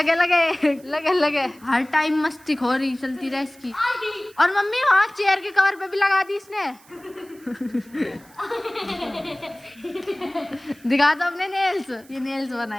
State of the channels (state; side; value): noise; right; hiss, 26 dB below the sound